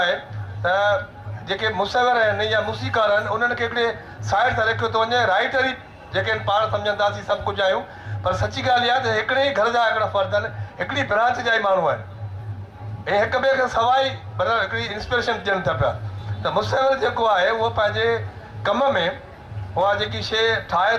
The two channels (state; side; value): identical; both; correlation 1.00